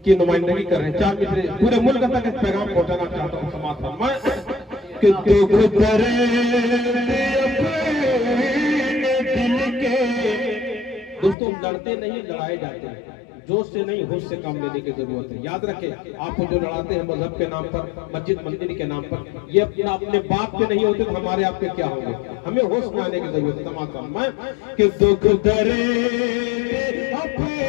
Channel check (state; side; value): drops out; right; at 11.4 s